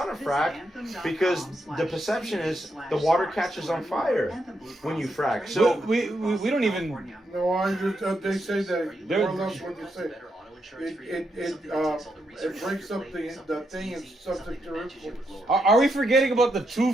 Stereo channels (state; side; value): normal; both; correlation 0.81